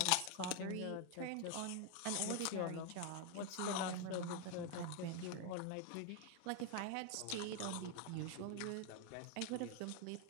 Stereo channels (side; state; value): both; different; correlation 0.01